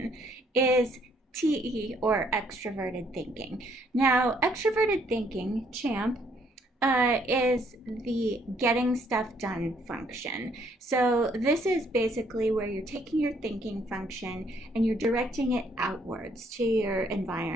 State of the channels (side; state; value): both; normal; correlation 0.67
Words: is TE, or extroverted thinking. Now, extroverted thinking, Champ, is the getting stuff done function. So this is basically where you're taking your thinking function and you're directing it outwards to your